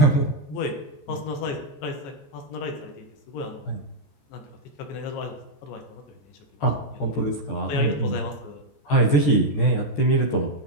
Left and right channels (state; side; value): late; right; 14 ms